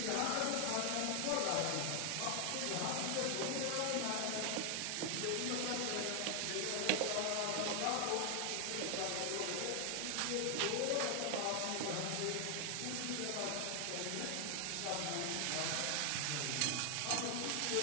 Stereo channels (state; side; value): different; both; correlation 0.00